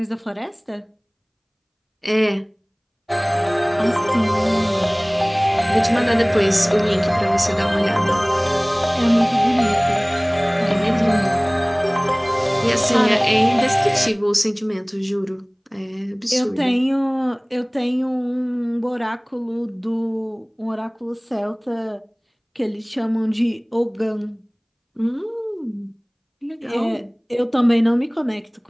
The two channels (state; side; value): identical; both; correlation 1.00